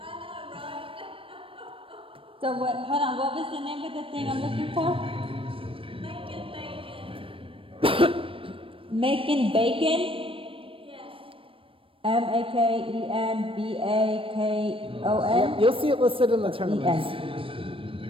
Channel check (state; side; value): late; left; 0.26 ms